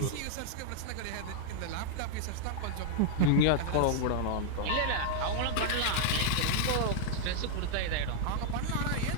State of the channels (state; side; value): different; both; correlation -0.01